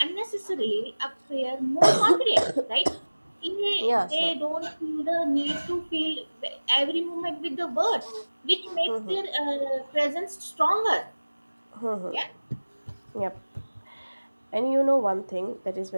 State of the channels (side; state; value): both; inverted; correlation -1.00